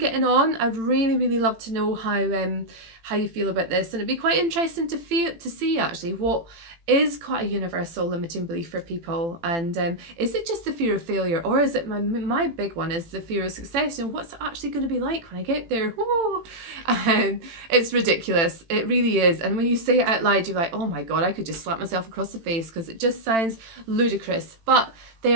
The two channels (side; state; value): left; late; 18 ms